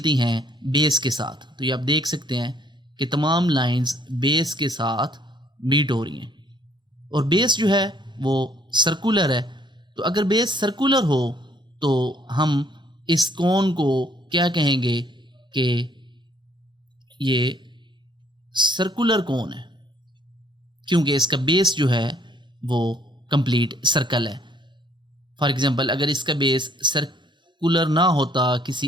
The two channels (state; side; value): normal; both; correlation 0.64